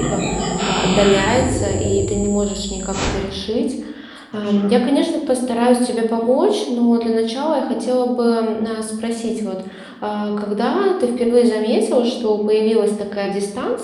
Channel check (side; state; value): both; identical; correlation 1.00